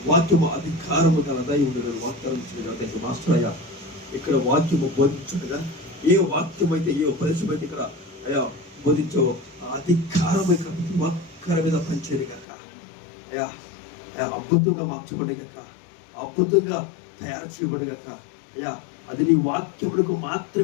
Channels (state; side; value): drops out; right; at 12.5 s